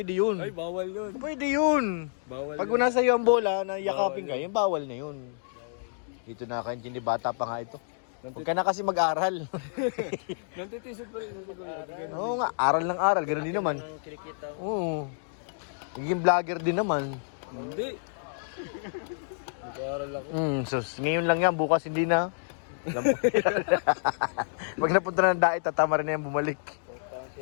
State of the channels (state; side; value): silent; right; digital silence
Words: yun. Ay, bawal yun. Pwede yun. Bawal Pag yun. una sa'yo ang bola, na yakapin ka, yung bawal na yun. Dito na kaintindi, bata pa nga ito. Huwag ka na kasi mag-aral. Nantitisod pa rin. Oo nga, aral ng aral, ganoon din naman. Oo. Naging vlogger din naman. Hindi. Nag-aaral ako. So ngayon lang yan, bukas hindi na. Pag napunta na ng dait, tatama rin na yan bumalik.